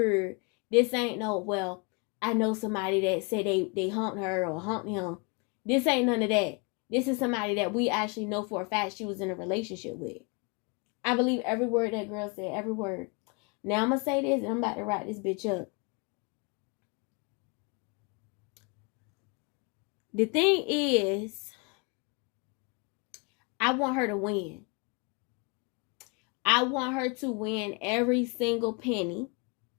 This ain't no, well, I know somebody that said they humped her or humped him. This ain't none of that. This is somebody that we actually know for a fact she was in a relationship with. I believe every word that girl said, every word. Now I'm going to say this and I'm about to wrap this bitch up. The thing is, I want her to win. I want her to win every single penny.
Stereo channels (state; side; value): quieter; right; 31.2 dB